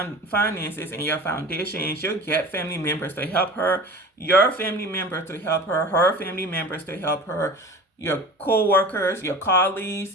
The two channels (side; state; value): both; normal; correlation 0.36